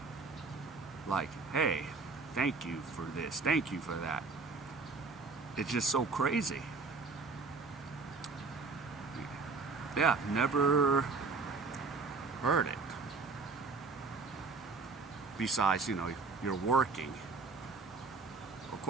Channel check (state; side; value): quieter; left; 4.3 dB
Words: hey, thank you for this, thank you for that. It's just so crazy. Yeah, never heard it. Besides, you're working. Of